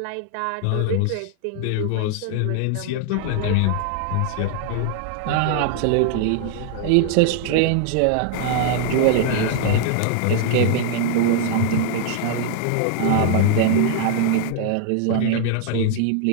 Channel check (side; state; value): both; different; correlation 0.00